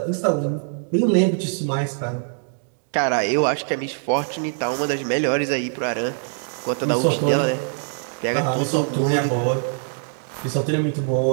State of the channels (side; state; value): left; silent; digital silence